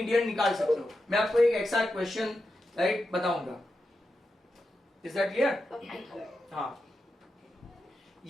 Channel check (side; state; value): both; normal; correlation 0.88